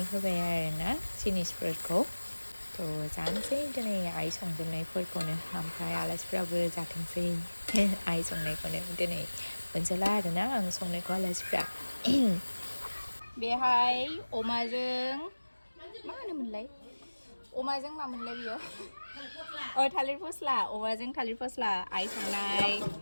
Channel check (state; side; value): inverted; both; correlation -1.00